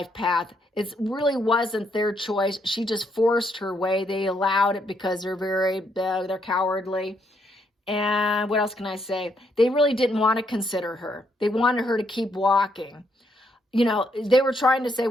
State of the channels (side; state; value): both; normal; correlation 0.74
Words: path. It really wasn't their choice. She just forced her way. They allowed it because they're cowardly. And what else can I say? They really didn't want to consider her. They wanted her to keep walking. They were trying to say,